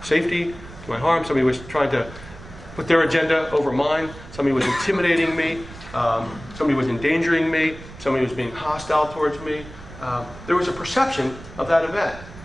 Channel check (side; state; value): right; noise; rumble, 16 dB below the sound